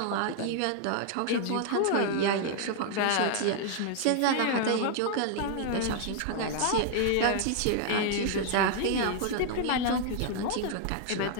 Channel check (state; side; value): different; both; correlation 0.00